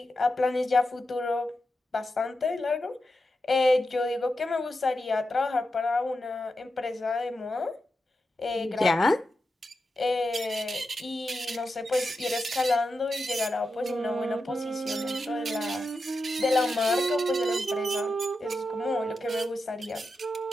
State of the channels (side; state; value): both; normal; correlation 0.89